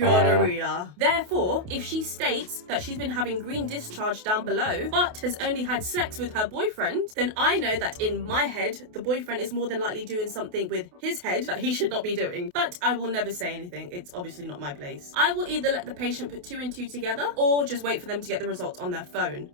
Therefore, if she states that she's been having green discharge down below, but has only had sex with her boyfriend, then I know that in my head, the boyfriend is more than likely doing something with his head that he should not be doing. But I will never say anything. It's obviously not my place. I will either let the patient put 2 and 2 together, or just wait for them to get the results on their phone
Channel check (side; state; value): left; late; 28 ms